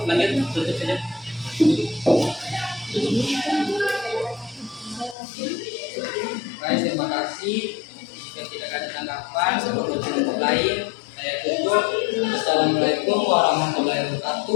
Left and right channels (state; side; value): drops out; right; at 5.2 s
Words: lanjut, tutup saja. Baik, terima kasih. Jika tidak ada tanggapan sebelum kelompok lain, saya tutup. Assalamualaikum warahmatullahi